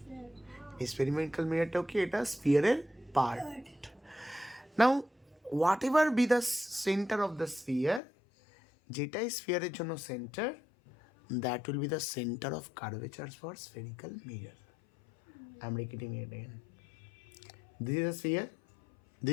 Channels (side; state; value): right; drops out; at 8.0 s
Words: Spherical mirror টা কি এটা sphere এর part. Now, whatever be the center of the sphere, যেটাই sphere এর জন্য center, that will be the center of curvature for spherical mirror. I'm repeating it again. This is a sphere.